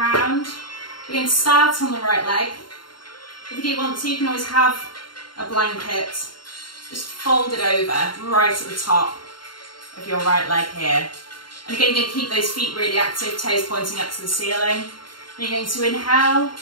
We're going to start on the right leg. If you do want to, you can always have a blanket just fold it over right at the top of your right leg here. And again, you're going to keep those feet really active, toes pointing up to the ceiling. And you're going to inhale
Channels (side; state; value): right; late; 0.72 ms